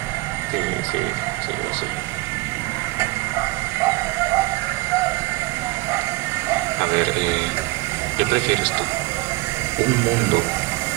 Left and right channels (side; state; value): left; quieter; 21.2 dB